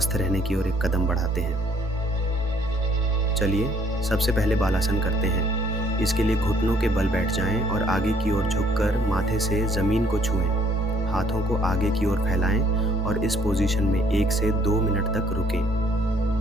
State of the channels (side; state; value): both; normal; correlation 0.63